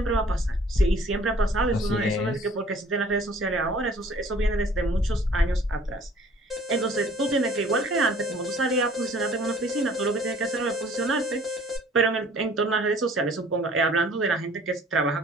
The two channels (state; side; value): normal; both; correlation 0.54